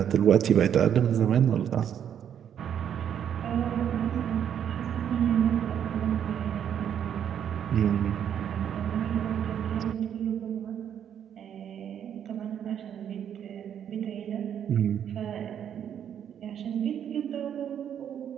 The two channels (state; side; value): quieter; left; 9.1 dB